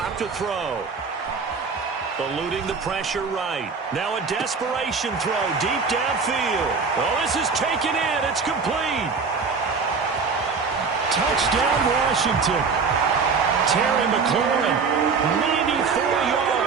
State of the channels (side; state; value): left; quieter; 5.1 dB